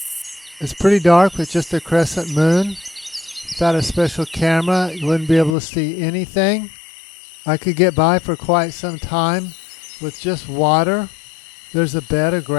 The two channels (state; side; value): drops out; right; at 5.6 s